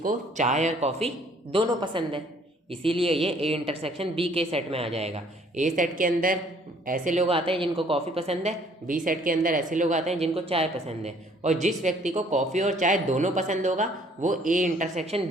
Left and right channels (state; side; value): normal; both; correlation 0.59